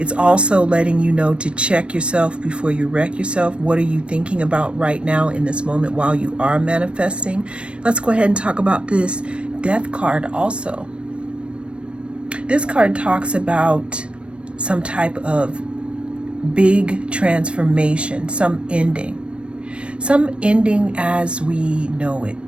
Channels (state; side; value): late; left; 0.059 ms